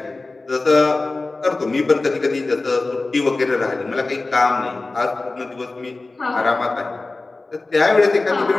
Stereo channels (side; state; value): right; quieter; 3.3 dB